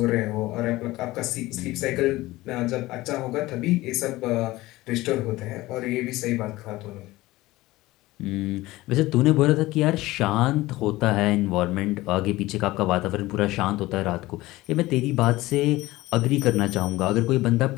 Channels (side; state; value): right; quieter; 18.5 dB